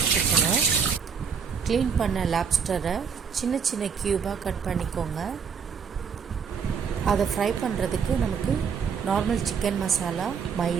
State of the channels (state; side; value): quieter; left; 6.5 dB